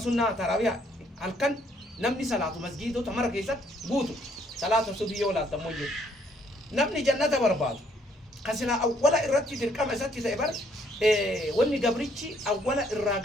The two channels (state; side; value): normal; both; correlation 0.67